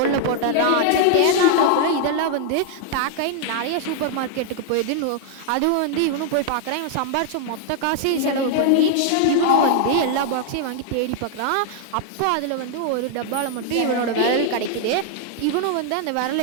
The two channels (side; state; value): both; different; correlation 0.00